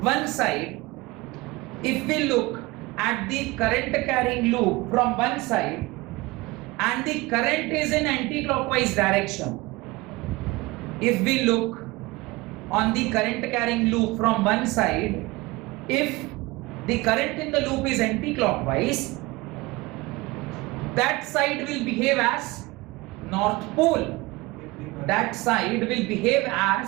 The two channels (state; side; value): quieter; left; 22.1 dB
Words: one side, if we look at the current carrying loop from one side and the current is in anti-clockwise direction, if we look on the current carrying loop from one side, if the current in the loop is anti-clockwise, that side will behave as north pole, that side will behave